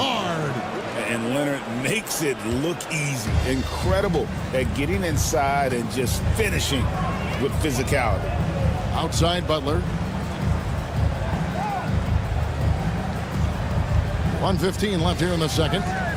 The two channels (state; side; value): identical; both; correlation 1.00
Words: And Leonard makes it look easy. Incredible at getting inside and just finishing with physicality. Outside Butler. 1:15 left here in the second.